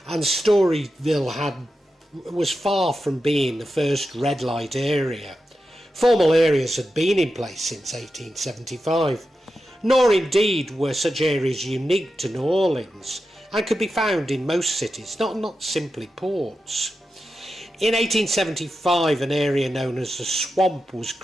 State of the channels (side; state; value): both; normal; correlation 0.90